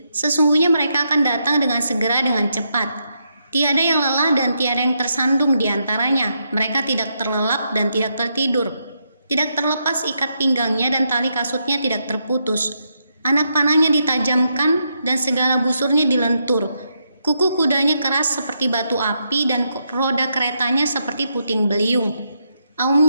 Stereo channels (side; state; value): both; inverted; correlation -0.81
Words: Sesungguhnya mereka akan datang dengan segera dengan cepat. Tiada yang lelah dan tiada yang tersandung di antaranya. Mereka tidak terlelap dan tidak tertidur. Tidak terlepas ikat pinggangnya dan tali kasutnya tidak terputus. Anak panahnya ditajamkan dan segala busurnya dilentur. Kuku kudanya keras seperti batu api dan roda keretanya seperti puting beliung.